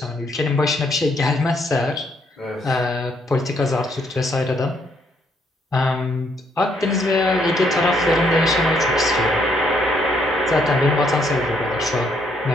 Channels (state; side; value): normal; both; correlation 0.71